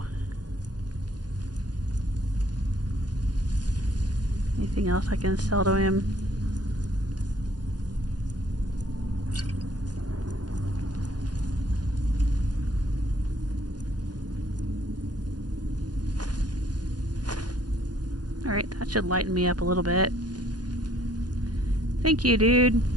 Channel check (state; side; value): late; left; 0.69 ms